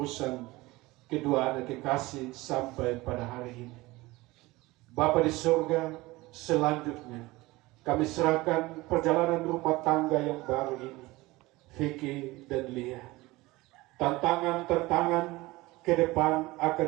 kedua anak kekasih sampai pada hari ini. Bapa di surga, selanjutnya kami serahkan perjalanan rumah tangga yang baru ini, Vicky dan Lia. Tantangan-tantangan ke depan akan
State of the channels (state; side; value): quieter; left; 20.5 dB